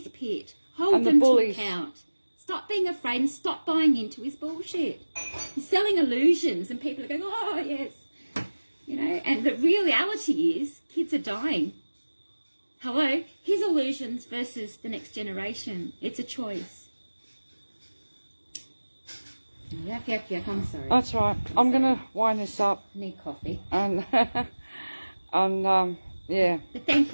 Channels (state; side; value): inverted; both; correlation -1.00